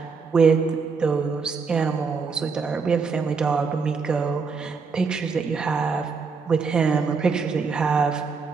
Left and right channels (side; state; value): left; quieter; 5.1 dB